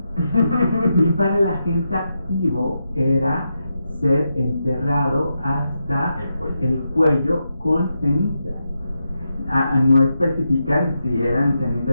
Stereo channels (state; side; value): inverted; both; correlation -0.86